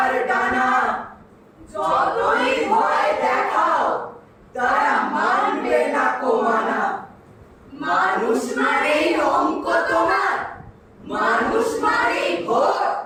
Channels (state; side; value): identical; both; correlation 1.00